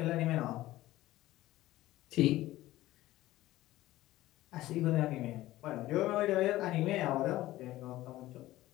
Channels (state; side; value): quieter; right; 16.3 dB